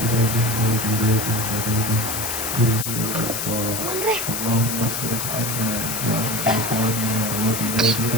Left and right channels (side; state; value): left; noise; hiss, 3 dB below the sound